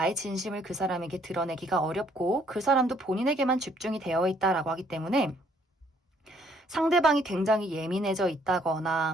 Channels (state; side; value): normal; both; correlation 0.65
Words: 진심을 그 사람에게 드러내기가 어렵고 그 사람도 본인에게만 집중이 되어 있다라고 하기 때문에 상대방이 굉장히 예민해져